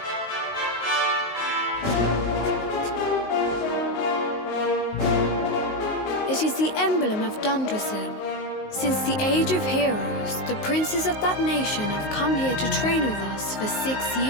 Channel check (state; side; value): late; right; 19 ms